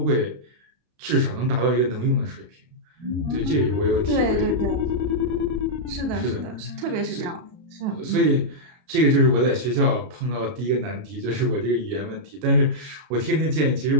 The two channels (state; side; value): late; left; 32 ms